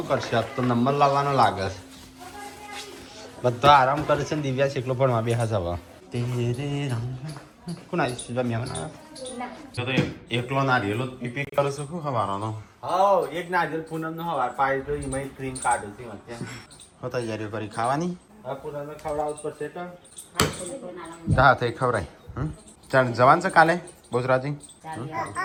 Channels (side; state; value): both; identical; correlation 1.00